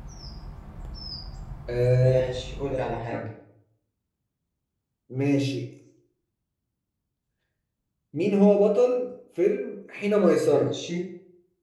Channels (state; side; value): identical; both; correlation 1.00